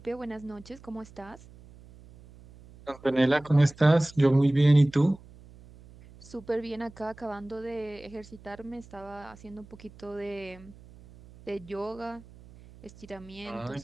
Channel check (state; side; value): noise; right; hum, 21 dB below the sound